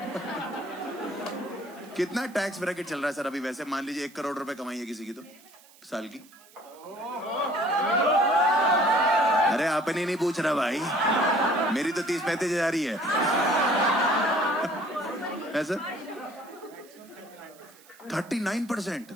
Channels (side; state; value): right; noise; hiss, 25 dB below the sound